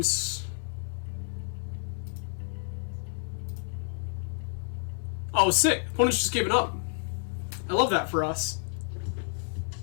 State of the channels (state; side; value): silent; right; digital silence